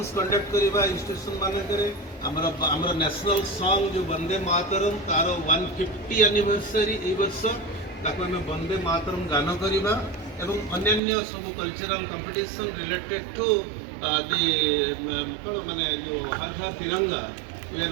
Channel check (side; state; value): left; drops out; at 11.0 s